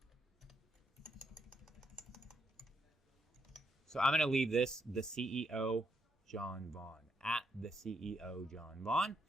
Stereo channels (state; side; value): normal; both; correlation 0.77